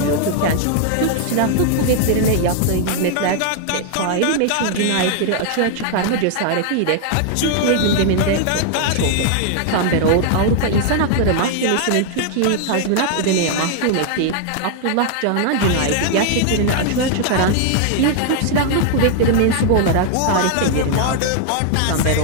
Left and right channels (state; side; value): different; both; correlation 0.00